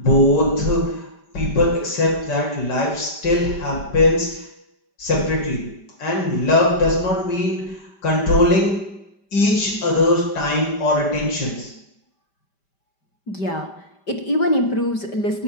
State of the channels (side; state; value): right; late; 5.1 ms